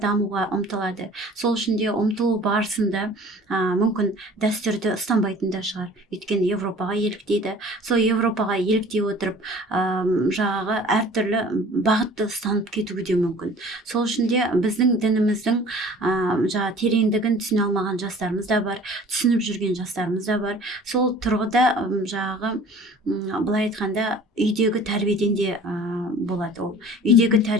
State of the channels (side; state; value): both; normal; correlation 0.47